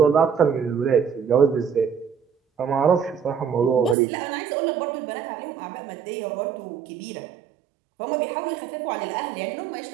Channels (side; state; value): left; drops out; at 4.0 s